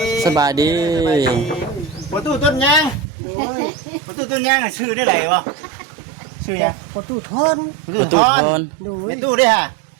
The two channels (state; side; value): drops out; left; at 3.1 s